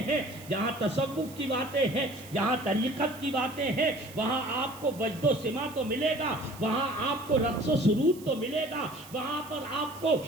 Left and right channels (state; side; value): noise; right; hiss, 19 dB below the sound